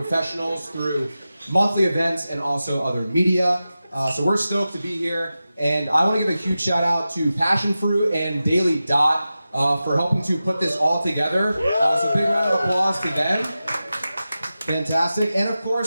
through monthly events and also other media. So we're stoked to be here. And I want to give a huge shout out to Passionfruit and Daily Dot for helping to put this all together. So big round of applause to them. Fantastic. And of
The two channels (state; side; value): inverted; both; correlation -0.93